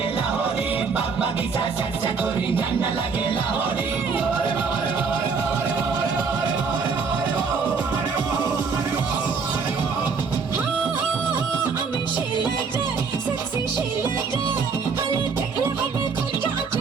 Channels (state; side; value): quieter; left; 5.2 dB